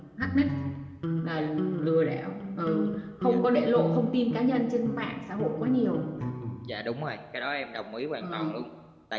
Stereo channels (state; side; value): identical; both; correlation 1.00